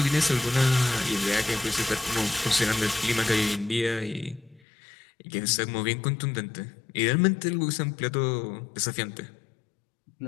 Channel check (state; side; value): drops out; right; at 4.6 s